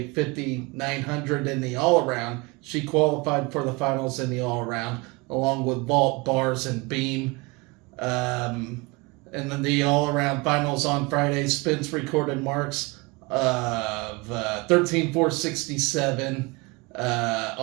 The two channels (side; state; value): left; quieter; 26.0 dB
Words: 5,900 in the all-around. She qualified for the finals in the all-around, along with vault, bars, and beam. And then the all-around finals on Friday, Spence recorded marks of 13,467